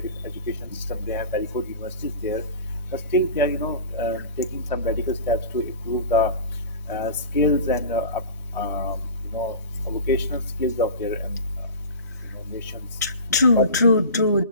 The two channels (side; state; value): both; inverted; correlation -0.34